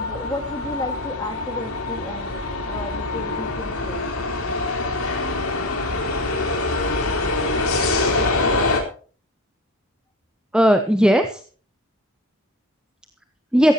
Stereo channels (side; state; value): both; normal; correlation 0.34